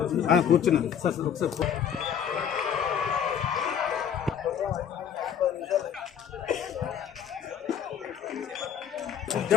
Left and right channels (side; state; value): right; quieter; 8.4 dB